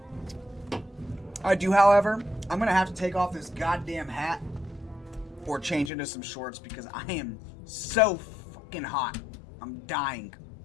I do, however, I'm going to have to take off this goddamn hat or change into some shorts because I am so fucking hot. I'm dying.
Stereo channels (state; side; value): drops out; right; at 5.9 s